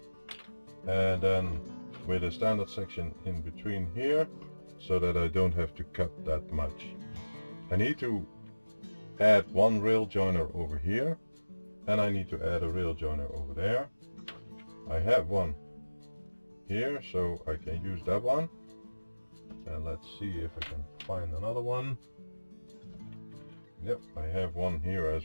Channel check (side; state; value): both; inverted; correlation -1.00